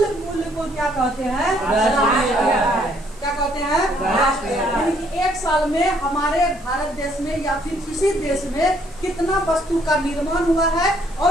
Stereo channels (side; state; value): right; noise; hiss, 26 dB below the sound